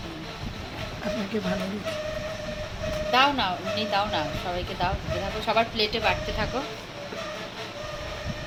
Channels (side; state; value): both; identical; correlation 1.00